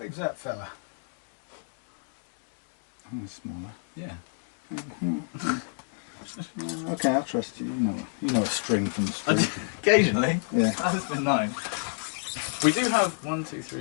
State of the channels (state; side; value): silent; right; digital silence